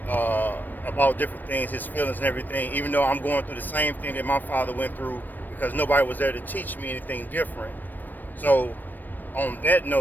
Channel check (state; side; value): late; right; 0.090 ms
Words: uh, about different things, his feelings and everything, even though I'm going through the same thing that my father went through because nobody was there to teach me anything different. So, on that